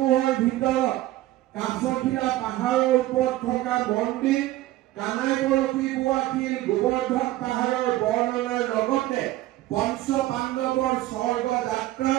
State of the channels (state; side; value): quieter; left; 15.9 dB